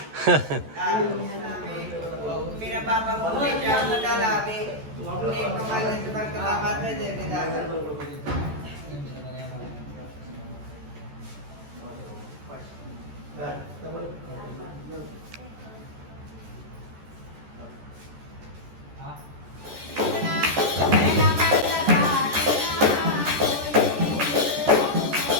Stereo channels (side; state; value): left; late; 14 ms